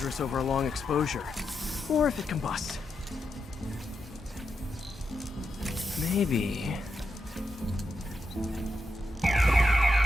over a long exposure. Or if it combusts. Maybe...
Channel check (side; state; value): both; normal; correlation 0.86